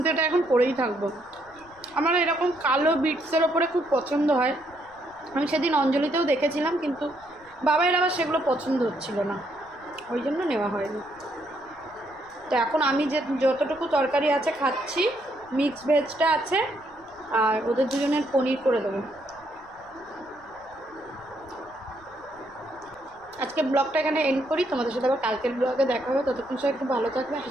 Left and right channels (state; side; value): noise; left; rumble, 28 dB below the sound